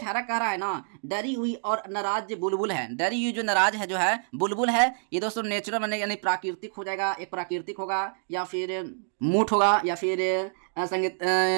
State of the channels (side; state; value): left; silent; digital silence